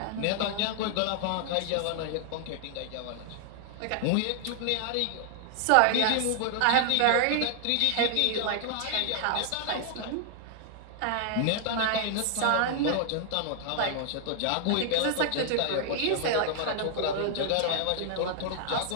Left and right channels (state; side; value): different; both; correlation 0.00